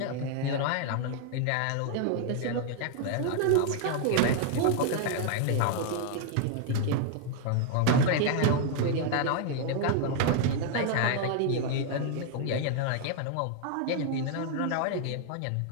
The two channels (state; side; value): different; both; correlation 0.00